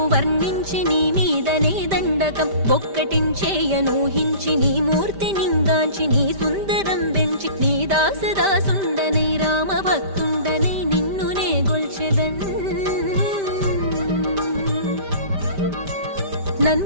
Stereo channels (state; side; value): late; left; 5.1 ms